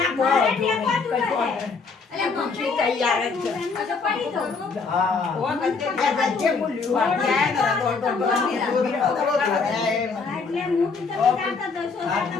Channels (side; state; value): right; quieter; 4.7 dB